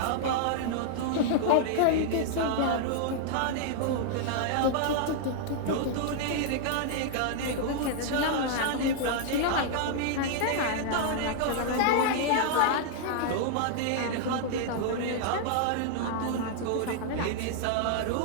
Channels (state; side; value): different; both; correlation -0.01